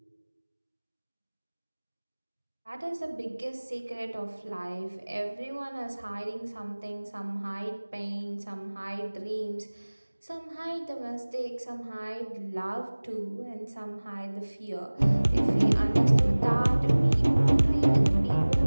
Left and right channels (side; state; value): both; inverted; correlation -1.00